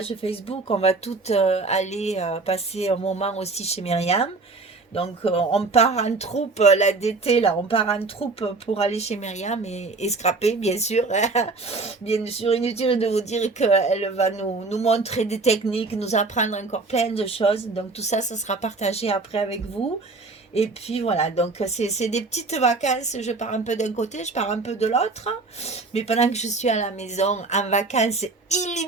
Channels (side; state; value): left; quieter; 3.7 dB